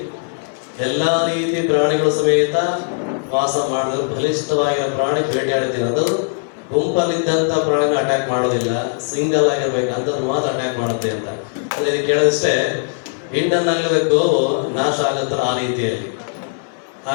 ಎಲ್ಲಾ ರೀತಿ ಪ್ರಾಣಿಗಳು ಸಮೇತ ವಾಸ ಮಾಡಿದ್ರು, ಬಲಿಷ್ಠವಾಗಿರೋ ಪ್ರಾಣಿ ಬೇಟೆಯಾಡ್ತೀನಿ, ಅದು ಗುಂಪಲ್ಲಿದ್ದಂತ ಪ್ರಾಣಿನ ಅಟ್ಯಾಕ್ ಮಾಡೋದಿಲ್ಲ, ಸಿಂಗಲ್ ಆಗಿರ್ಬೇಕಂತದ್ದು ಮಾತ್ರ ಅಟ್ಯಾಕ್ ಮಾಡುತ್ತೆ ಅಂತ. ಅದಕ್ಕೆ ಕೇಳಿದಷ್ಟೇ ಇಂಡನ್ ಆಗಲಿದ ಗೋವು ನಾಶ ಆಗುತ್ತ ಆ ರೀತಿಯಲ್ಲಿ.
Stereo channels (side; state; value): right; silent; digital silence